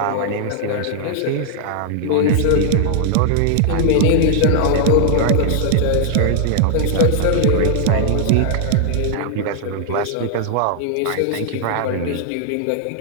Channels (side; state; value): both; different; correlation -0.01